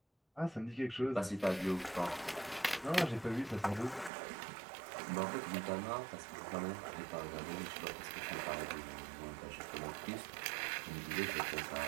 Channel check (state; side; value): drops out; left; at 4.1 s